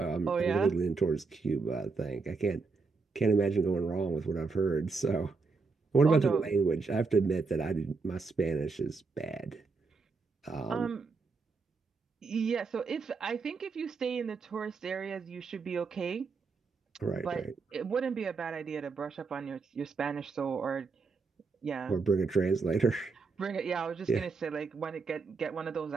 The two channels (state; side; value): quieter; left; 4.5 dB